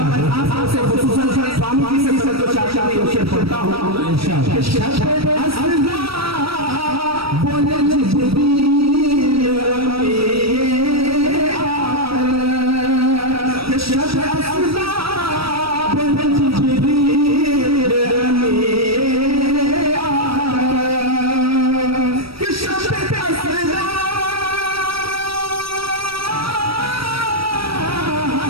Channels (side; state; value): left; late; 0.76 ms